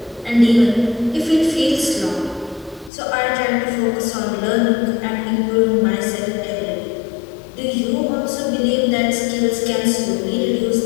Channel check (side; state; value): right; drops out; at 2.9 s